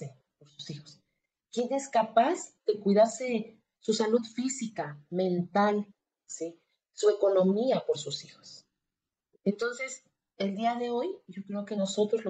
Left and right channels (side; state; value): both; identical; correlation 1.00